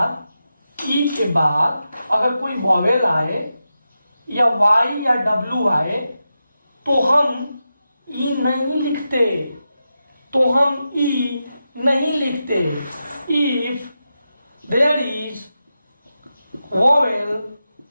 बाद अगर कोई वॉवेल आए या वाई या डब्ल्यू आए तो हम ई नहीं लिखते, इफ देयर इज वॉवेल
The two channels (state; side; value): inverted; both; correlation -0.89